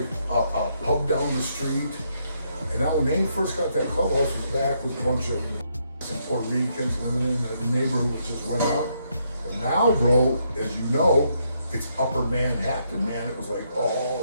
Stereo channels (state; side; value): inverted; both; correlation -0.75